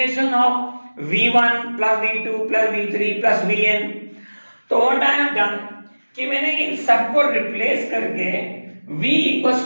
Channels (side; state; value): both; inverted; correlation -1.00